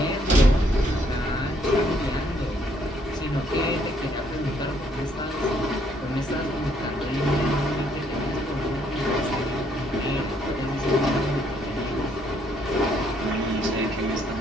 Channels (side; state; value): both; normal; correlation 0.69